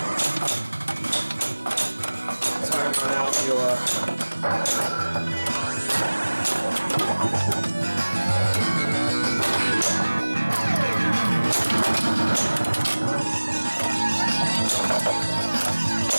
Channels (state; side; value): inverted; both; correlation -1.00